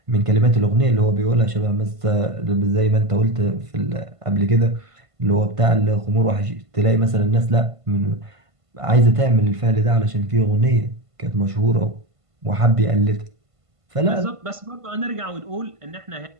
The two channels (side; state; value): left; late; 1.5 ms